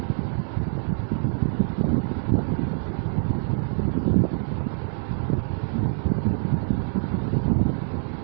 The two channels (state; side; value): silent; left; 62 dB below the other